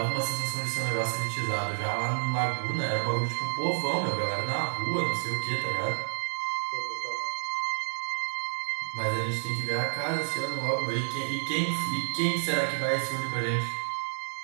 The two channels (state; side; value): silent; left; digital silence